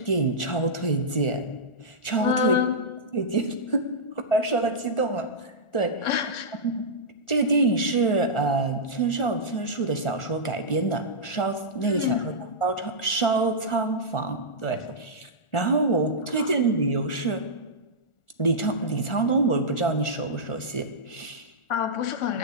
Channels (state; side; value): late; right; 1.4 ms